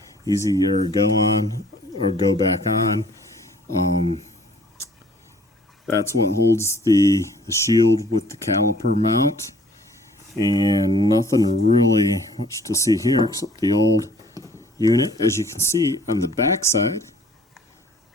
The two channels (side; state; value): both; normal; correlation 0.55